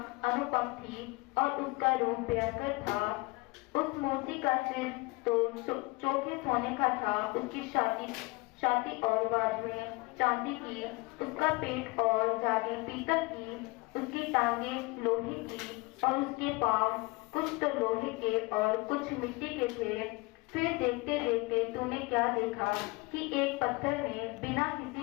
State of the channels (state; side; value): quieter; right; 24.8 dB